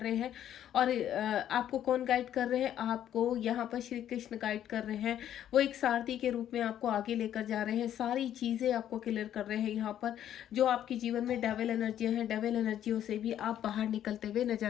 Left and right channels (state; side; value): quieter; right; 10.9 dB